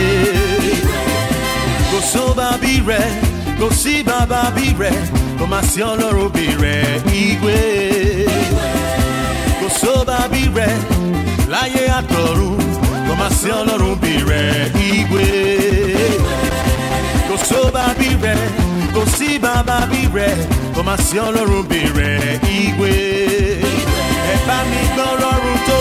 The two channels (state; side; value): identical; both; correlation 1.00